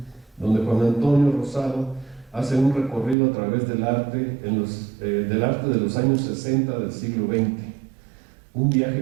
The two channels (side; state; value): left; drops out; at 3.2 s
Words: donde Juan Antonio Rosado hace un recorrido a través del arte de los años 60 del siglo XX, un